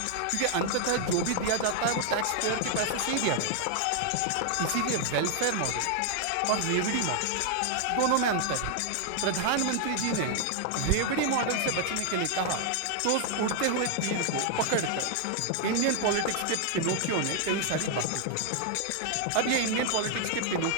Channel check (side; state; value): both; different; correlation 0.00